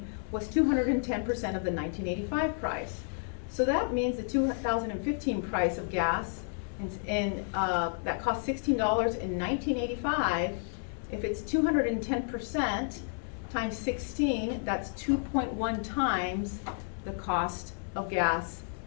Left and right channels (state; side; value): silent; right; 57 dB below the other